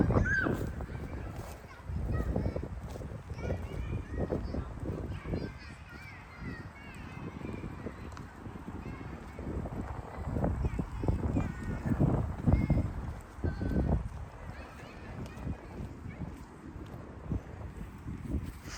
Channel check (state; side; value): identical; both; correlation 1.00